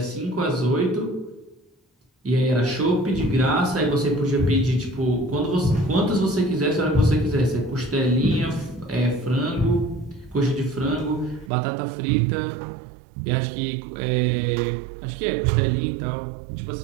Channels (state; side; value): drops out; left; at 11.5 s